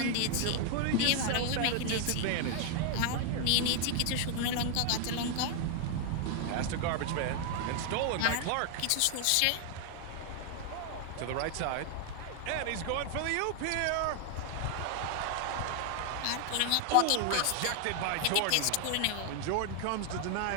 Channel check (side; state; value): both; different; correlation 0.00